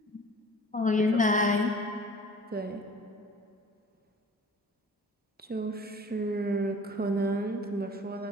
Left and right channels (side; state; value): both; normal; correlation 0.46